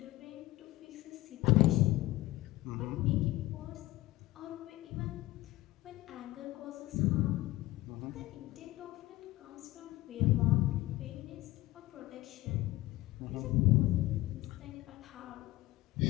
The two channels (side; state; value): right; quieter; 17.9 dB